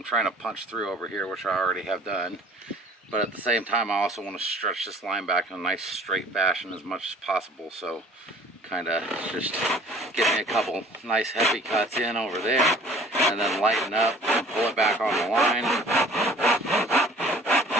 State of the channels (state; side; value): normal; both; correlation 0.51